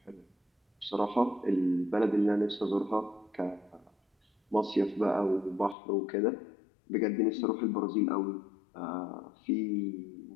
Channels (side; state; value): right; drops out; at 5.8 s